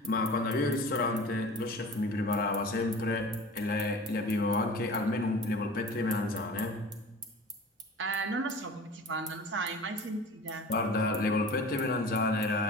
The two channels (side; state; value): both; normal; correlation 0.39